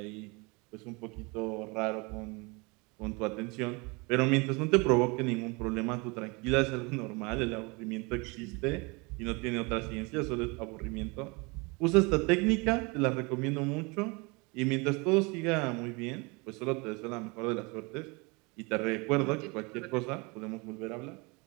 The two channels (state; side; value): quieter; left; 28.2 dB